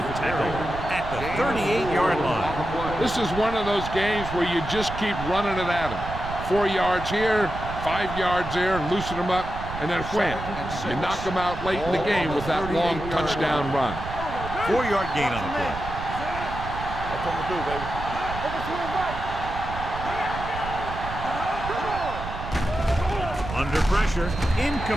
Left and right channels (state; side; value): noise; right; rumble, 9 dB below the sound